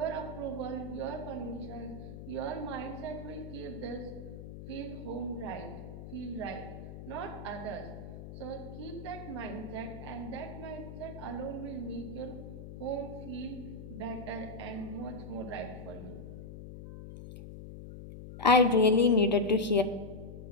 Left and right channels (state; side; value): noise; left; hum, 11 dB below the sound